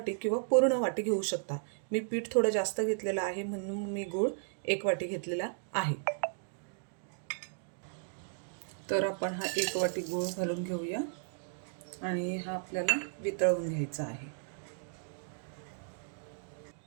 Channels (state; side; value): silent; left; digital silence